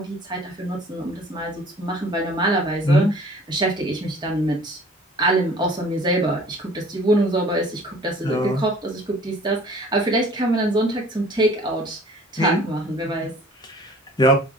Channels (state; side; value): normal; both; correlation 0.50